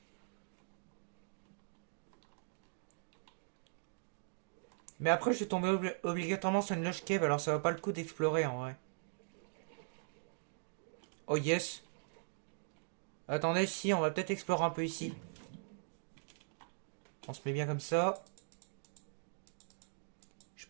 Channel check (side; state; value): left; silent; digital silence